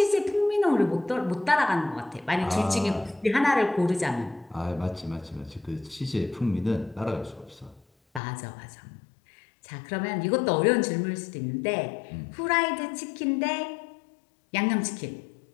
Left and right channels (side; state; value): right; drops out; at 8.2 s